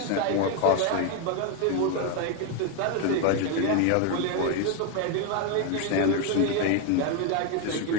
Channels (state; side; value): different; both; correlation 0.01